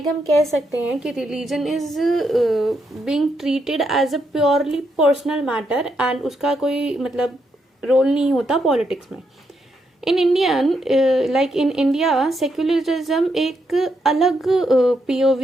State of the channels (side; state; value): both; normal; correlation 0.79